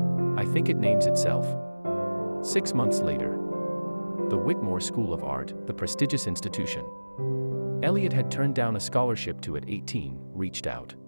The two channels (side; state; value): both; inverted; correlation -1.00